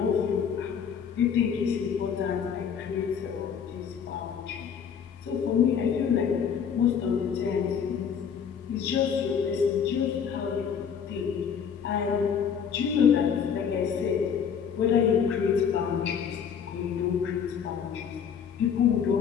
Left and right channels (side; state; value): right; quieter; 7.4 dB